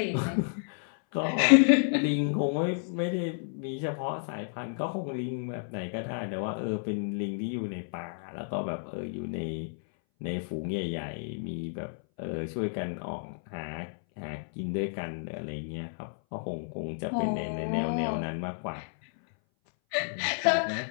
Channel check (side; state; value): right; silent; 57 dB below the other